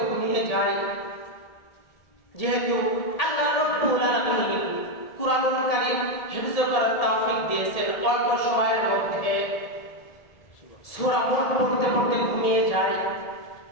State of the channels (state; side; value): late; right; 1.7 ms